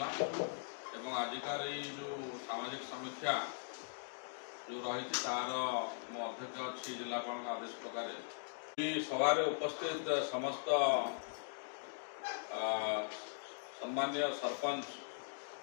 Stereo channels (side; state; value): right; silent; digital silence